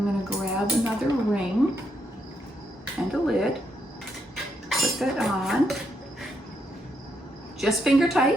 gonna grab another ring and a lid, put that on, just finger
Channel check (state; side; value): normal; both; correlation 0.77